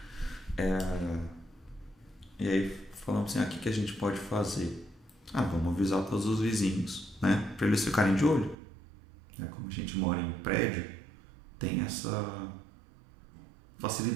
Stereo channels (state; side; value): drops out; left; at 8.6 s